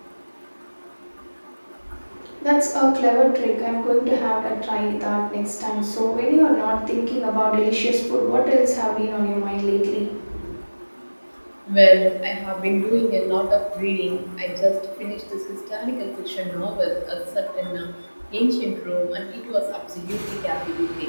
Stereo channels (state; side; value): inverted; both; correlation -1.00